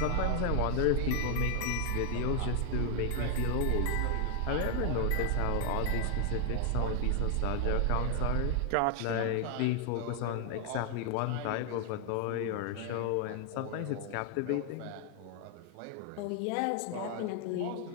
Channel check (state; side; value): different; both; correlation 0.00